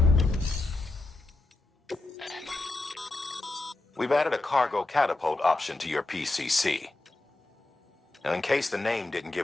We've added a cargo catapult option to your PCC. Now, in case the name didn't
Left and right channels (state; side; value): quieter; right; 3.0 dB